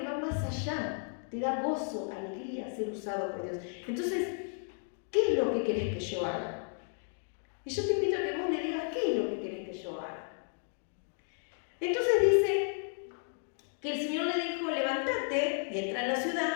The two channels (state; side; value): silent; right; 56 dB below the other